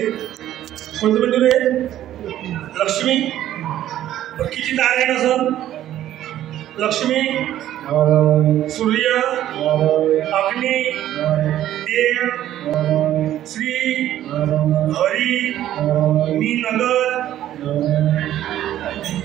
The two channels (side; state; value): left; quieter; 12.5 dB